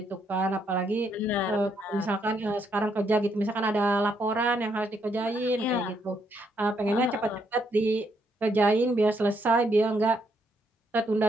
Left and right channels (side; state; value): both; normal; correlation 0.75